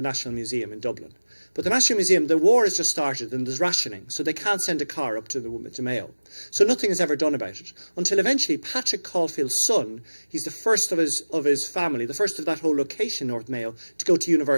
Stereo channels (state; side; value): inverted; both; correlation -1.00